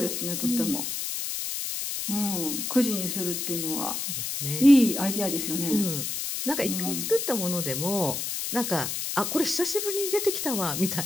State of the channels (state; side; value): noise; left; hiss, 3 dB below the sound